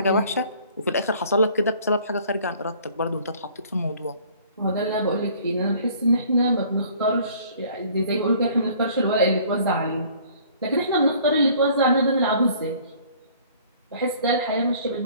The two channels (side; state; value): both; inverted; correlation -0.54